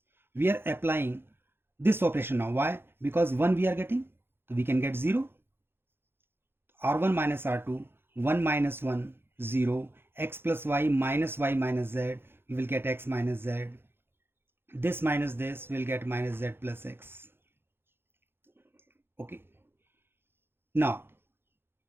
we are applying this operation now. Why? Because 1 we are getting, so we can get 0. R1 minus R2, 1 minus 1, 0, x plus y minus z, we will get x minus z. This minus this will get minus z plus x. Okay. Now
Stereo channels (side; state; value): left; late; 0.11 ms